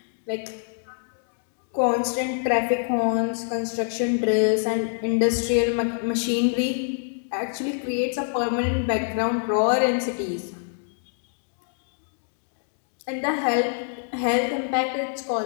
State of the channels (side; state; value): right; silent; digital silence